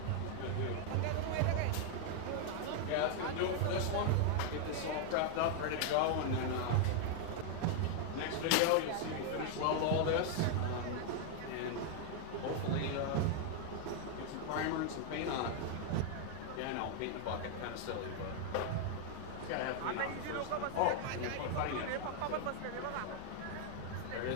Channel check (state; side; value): different; both; correlation 0.00